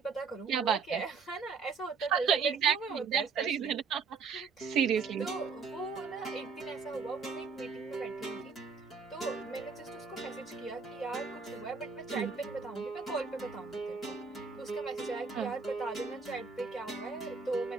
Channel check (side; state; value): left; quieter; 5.3 dB